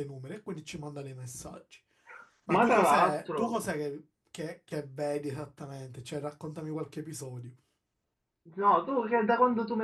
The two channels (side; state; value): both; identical; correlation 1.00